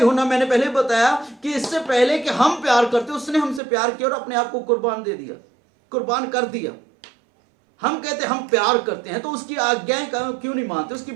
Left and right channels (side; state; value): left; drops out; at 3.6 s